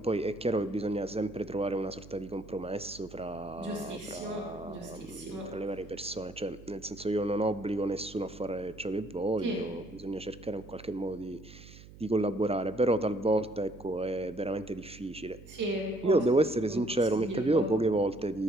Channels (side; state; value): right; noise; hum, 18 dB below the sound